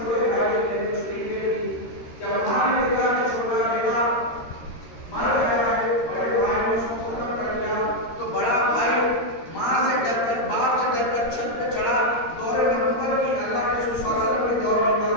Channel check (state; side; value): late; right; 13 ms